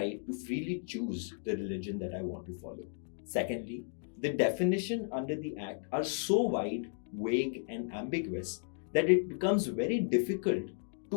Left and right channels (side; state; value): right; silent; digital silence